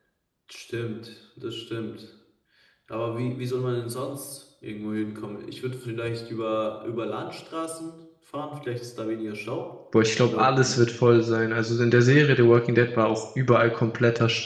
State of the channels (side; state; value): both; identical; correlation 1.00